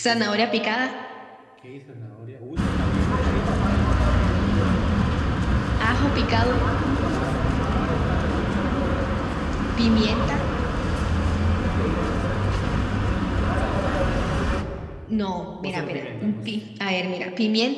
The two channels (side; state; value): both; identical; correlation 1.00